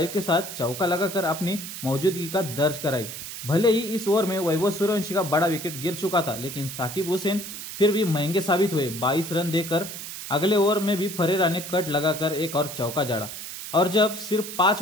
के साथ चौका लगाकर अपनी मौजूदगी का दर्ज कराई। भले ही इस ओवर में वैभव सूर्यवंशी का बड़ा विकेट गिर चुका था, लेकिन साकिब हुसैन फिर भी महंगे साबित हुए। 22 रन देकर अगले ओवर में भी फरेरा ने कट लगाकर एक और चौका जड़ा। और जब सिर्फ 5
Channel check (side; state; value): right; noise; hiss, 9 dB below the sound